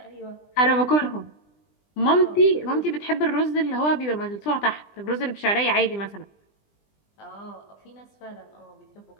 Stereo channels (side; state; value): right; late; 20 ms